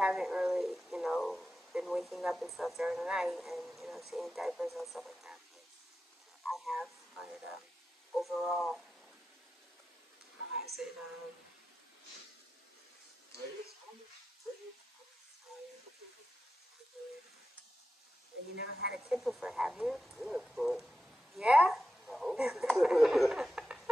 really, you know, been waking up and stuff during the night and, you know, changing diapers and stuff like that. But I have, but overall, how has it, you never had a kid before, have you? Yeah, but Yeah? no.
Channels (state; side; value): normal; both; correlation 0.92